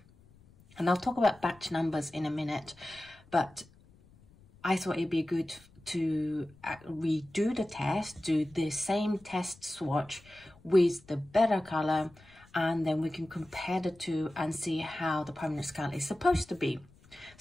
And I'll talk about batch numbers in a minute. But I thought it'd be good to redo the test, do the same test swatch with the better color, and then we can compare the two and see how the Permanent Scarlet is supposed to be.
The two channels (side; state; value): left; noise; rumble, 27 dB below the sound